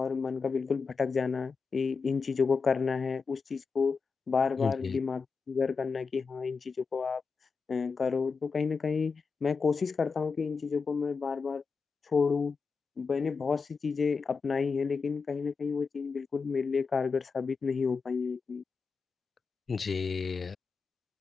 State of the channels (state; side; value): quieter; right; 5.0 dB